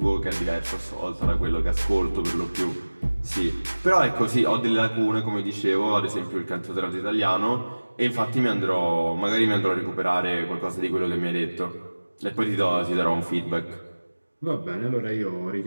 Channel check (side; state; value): both; inverted; correlation -1.00